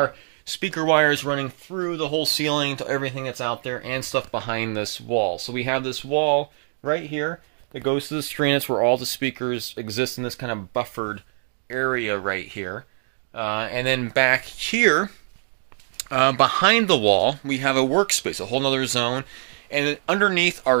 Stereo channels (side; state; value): left; silent; digital silence